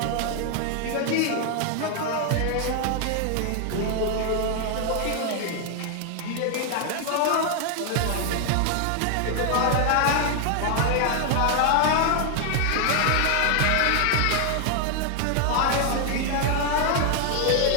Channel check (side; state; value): both; different; correlation 0.00